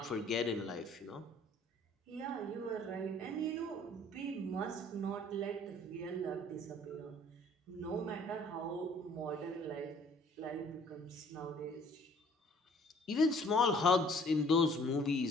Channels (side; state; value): both; normal; correlation 0.56